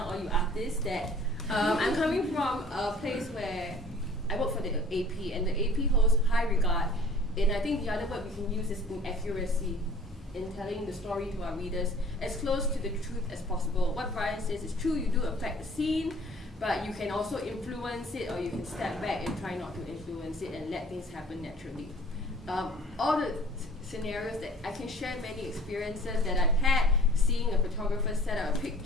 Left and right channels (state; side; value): normal; both; correlation 0.50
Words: all you artists. That I'm coming from a place where I work for the AP, and the AP holds high regard. And I think the other word we can use is inaccuracy in telling the story to our readers as close to the truth as possible. What Bryan says is true, you do affect the scene, but you can also influence it, or you can step back and try not to influence it and let things happen naturally. All the scenarios that I can share, many experiences that I've had, seeing a photographer set up a